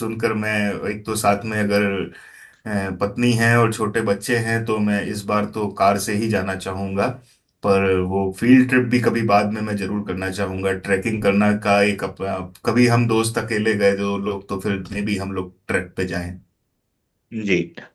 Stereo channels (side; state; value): both; identical; correlation 1.00